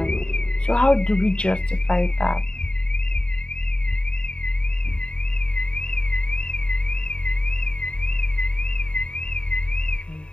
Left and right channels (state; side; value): late; right; 0.051 ms